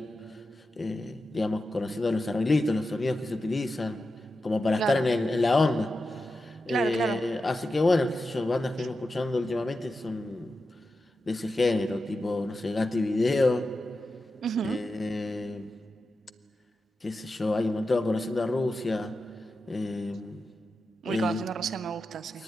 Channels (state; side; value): normal; both; correlation 0.91